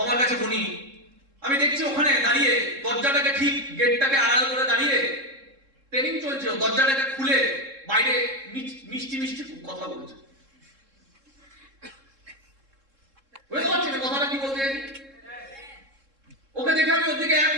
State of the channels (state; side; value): late; left; 3.7 ms